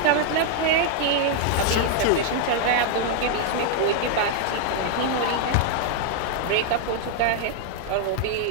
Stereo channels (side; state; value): both; different; correlation 0.00